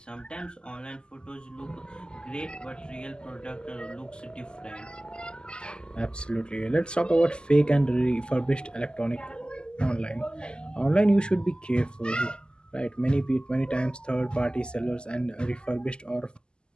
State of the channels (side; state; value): right; late; 0.048 ms